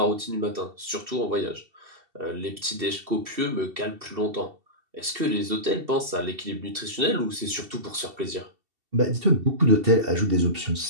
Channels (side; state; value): left; late; 2.7 ms